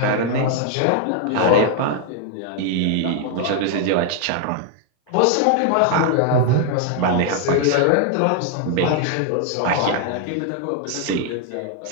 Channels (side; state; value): both; different; correlation 0.00